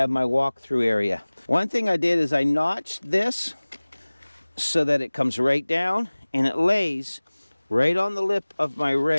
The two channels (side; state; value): both; inverted; correlation -1.00